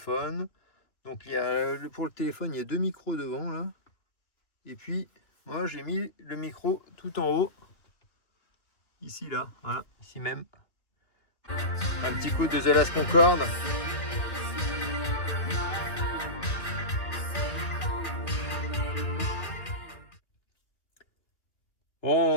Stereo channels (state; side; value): late; right; 2.7 ms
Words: Donc il y a pour le téléphone, il y a 2 micros devant là. Et puis moi j'ai mis le micro tout en haut. Ici là, voilà, ici même. Un petit coup de The Last Concorde.